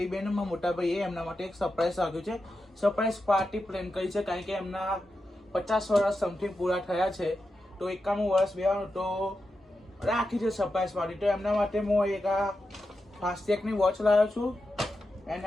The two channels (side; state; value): both; normal; correlation 0.89